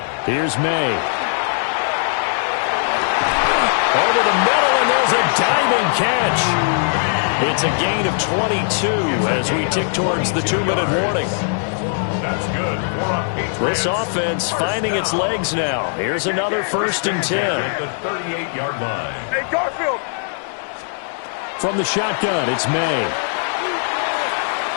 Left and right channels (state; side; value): silent; right; 66 dB below the other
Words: Here's May. Over the middle, and there's a diving catch. It's a gain of 22 as we tick towards the 2-minute warning. That's good for a Patriots. This offense finding its legs now. Here's another 1st and 10. At the 38-yard line. Hey, Garfield. From the shotgun, it's May.